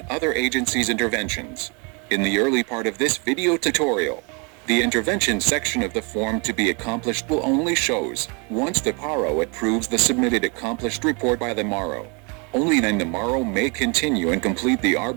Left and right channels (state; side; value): quieter; left; 32.7 dB